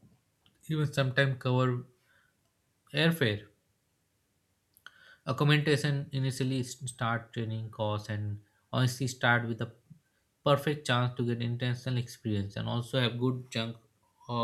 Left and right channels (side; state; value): both; identical; correlation 1.00